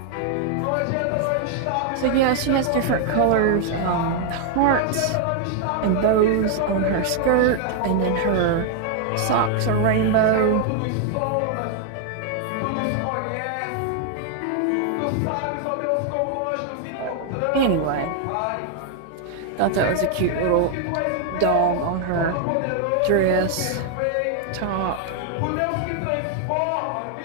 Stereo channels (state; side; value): different; both; correlation 0.00